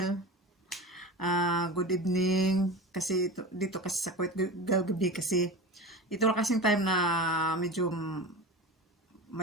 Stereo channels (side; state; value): both; normal; correlation 0.29